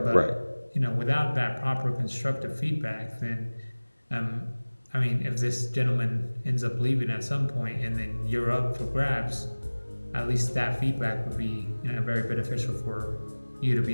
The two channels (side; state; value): both; inverted; correlation -1.00